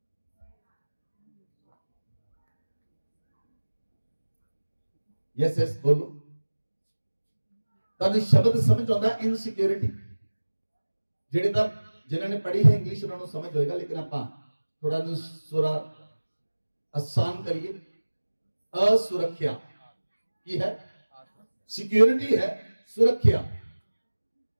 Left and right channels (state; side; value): inverted; both; correlation -1.00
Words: यस बोलो। ਤੁਹਾਨੂੰ ਸ਼ਬਦ ਸਮਝ ਆਉਂਦਾ ਇਨਸਿਕਿਉਰਿਟੀ? ਜਿਹੜੇ ਤਾਂ ਜਿਨ੍ਹਾਂ ਨੇ ਪੜ੍ਹੀ ਹੈ ਇੰਗਲਿਸ਼ ਉਹਨਾਂ ਨੂੰ ਸਮਝ ਹੋਏਗਾ, ਲੇਕਿਨ ਆਪਾਂ ਥੋੜਾ ਨੂੰ ਥੋੜਾ ਆਸਾਨ ਕਰੀਏ। असुरक्षा की है, सिक्योरिटी है सुरक्षा,